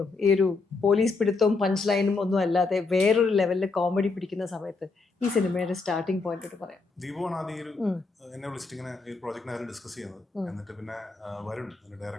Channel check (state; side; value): quieter; right; 3.9 dB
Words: ഈ ഒരു പോലീസ് പിടുത്തവും പഞ്ച് ലൈനും ഒന്നും അല്ലാതെ വേറൊരു ലെവലിൽ കോമഡി പിടിക്കുന്ന സമയത്ത് ഈ സിനിമയുടെ സ്റ്റാർട്ടിംഗ് പോയിന്റ് പറയാം? ദീപുവാണ് ആദ്യം എന്നെ വിളിച്ചിട്ട് ഇങ്ങനെ ഈ പ്രോജക്റ്റിനെ ഡിസ്കസ് ചെയ്യുന്നത്. എന്നിട്ട് പിന്നെ വരുൺ